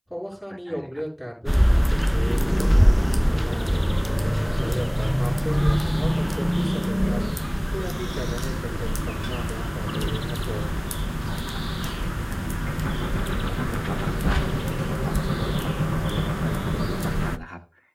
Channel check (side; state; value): both; identical; correlation 1.00